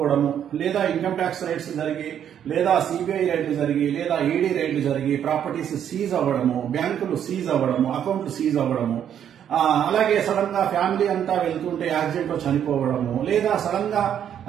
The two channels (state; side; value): quieter; left; 9.4 dB